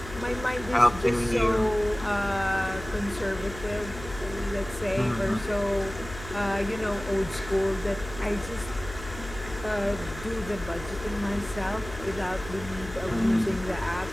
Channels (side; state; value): left; noise; hum, 12 dB below the sound